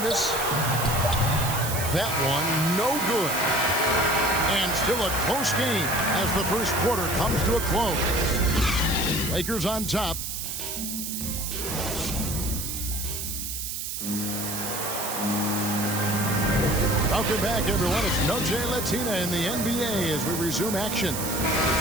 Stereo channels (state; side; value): noise; right; hiss, 5 dB below the sound